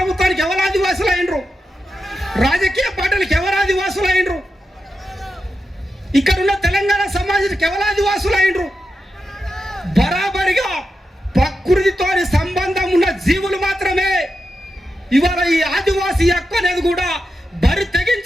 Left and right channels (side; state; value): both; normal; correlation 0.89